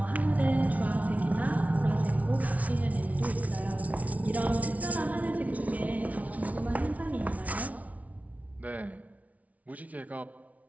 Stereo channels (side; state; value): left; late; 0.069 ms